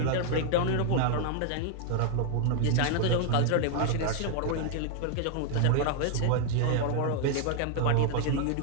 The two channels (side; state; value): both; different; correlation 0.00